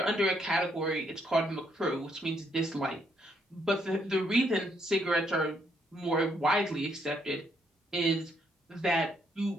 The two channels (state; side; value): normal; both; correlation 0.73